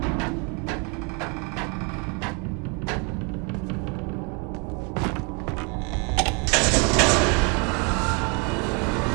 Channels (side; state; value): left; quieter; 33.6 dB